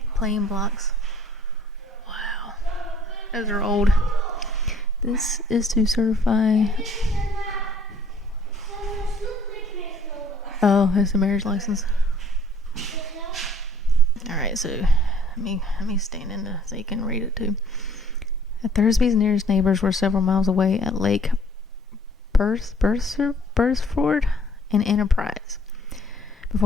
plain blocks. Wow. Those are old. This is to certify... Oh, it's a marriage license. Alright, so let me stand in so you can read it too. The Thursby's nearest neighbors were several miles away at Lake Bursford and Enterprise.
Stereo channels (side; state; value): both; normal; correlation 0.58